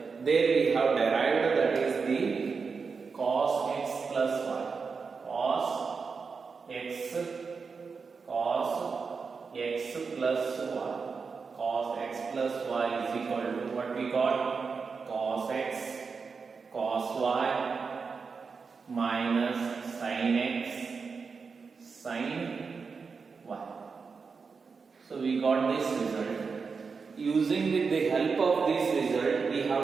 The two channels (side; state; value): left; quieter; 5.1 dB